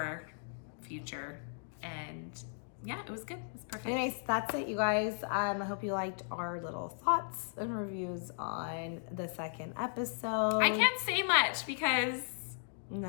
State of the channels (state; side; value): silent; right; digital silence